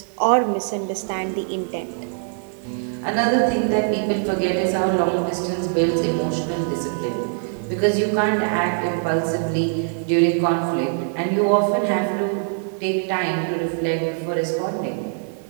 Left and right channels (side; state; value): left; silent; 62 dB below the other